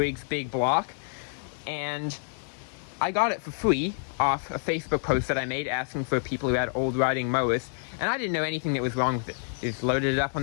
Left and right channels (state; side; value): silent; right; digital silence